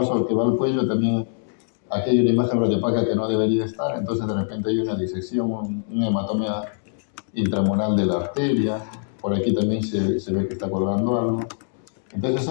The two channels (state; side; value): silent; right; digital silence